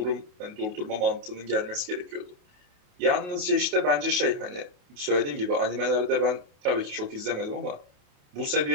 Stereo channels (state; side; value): late; left; 28 ms